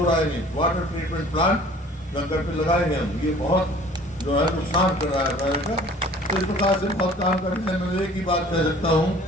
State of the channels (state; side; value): normal; both; correlation 0.50